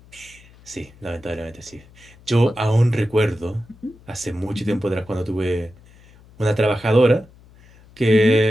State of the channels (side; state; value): left; noise; hum, 25 dB below the sound